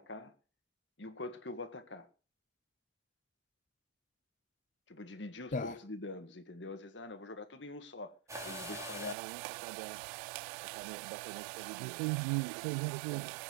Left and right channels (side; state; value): left; drops out; at 9.2 s